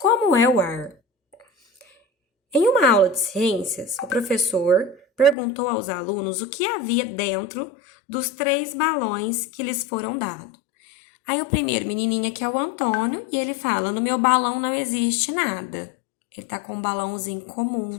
é o ar? Em uma aula de ciências, o professor perguntou aos alunos o que havia dentro dos 3 balões que lhes foram dados. Aí o primeiro menininho aqui é o Antônio e ele fala: no meu balão não existe nada. Ele tá com um balãozinho comum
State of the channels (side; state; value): right; drops out; at 5.4 s